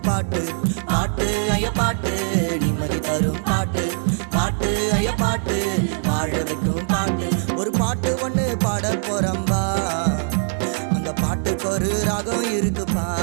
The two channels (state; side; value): silent; left; 64 dB below the other